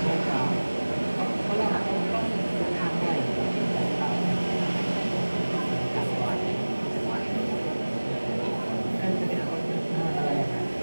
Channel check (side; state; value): both; inverted; correlation -1.00